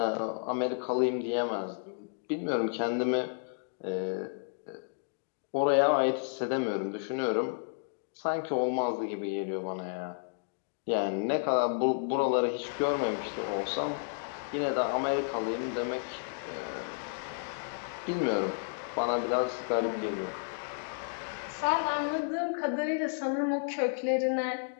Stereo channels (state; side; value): silent; right; digital silence